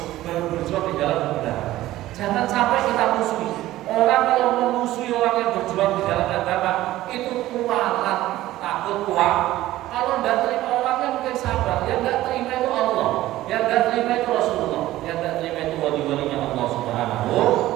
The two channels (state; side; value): quieter; left; 15.5 dB